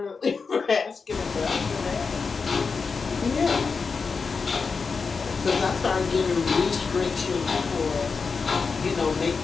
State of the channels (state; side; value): quieter; right; 5.0 dB